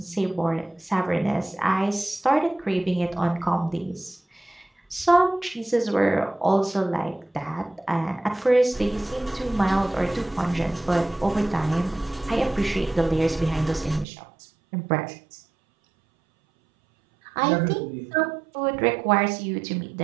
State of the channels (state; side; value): drops out; left; at 14.1 s